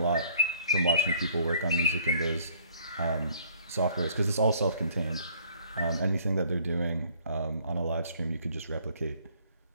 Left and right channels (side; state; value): both; inverted; correlation -0.58